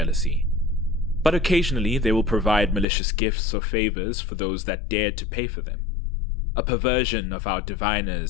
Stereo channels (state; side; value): drops out; right; at 2.9 s